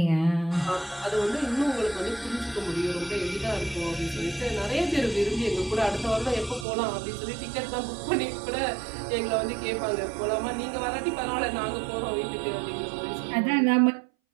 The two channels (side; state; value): left; drops out; at 6.7 s